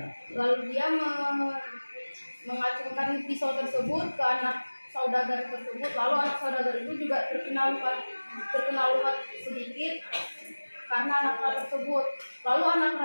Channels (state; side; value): inverted; both; correlation -1.00